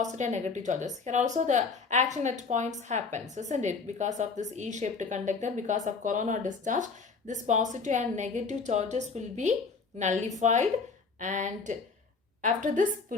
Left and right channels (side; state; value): right; quieter; 4.7 dB